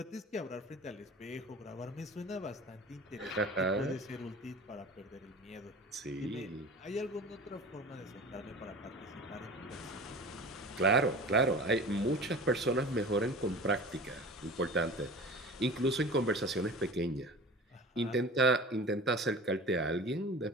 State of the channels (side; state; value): both; normal; correlation 0.37